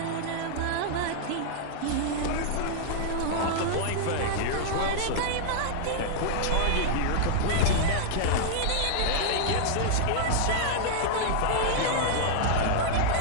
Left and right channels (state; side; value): different; both; correlation -0.01